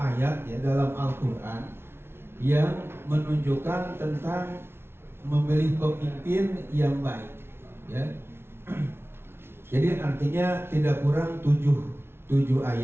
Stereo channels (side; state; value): left; late; 0.12 ms